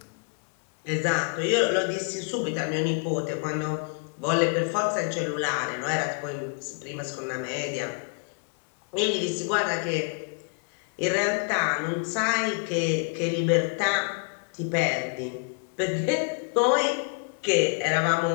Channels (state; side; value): quieter; right; 38.8 dB